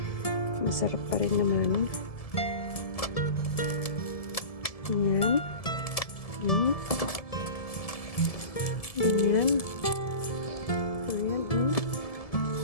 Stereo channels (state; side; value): late; right; 1.7 ms